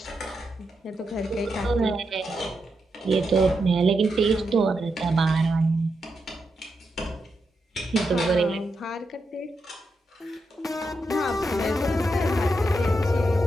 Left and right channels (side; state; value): both; normal; correlation 0.85